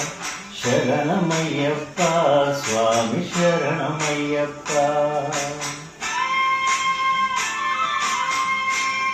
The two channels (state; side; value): identical; both; correlation 1.00